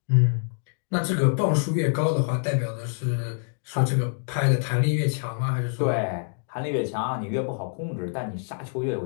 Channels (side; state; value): right; silent; digital silence